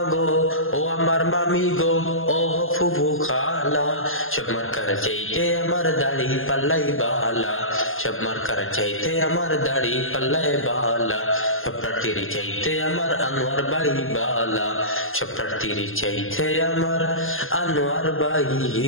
গো, ও আমার মামি গো, ও ফুফু খালা, সব মার্কার চাইতে আমার দাড়ি পাল্লাই বালা, সব মার্কার চাইতে আমার দাড়ি পাল্লাই বালা। সব প্রার্থীর চাইতে আমার আনোয়ার ভাই বালা, সব প্রার্থীর চাইতে আমার আনোয়ার ভাই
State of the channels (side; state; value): right; late; 0.60 ms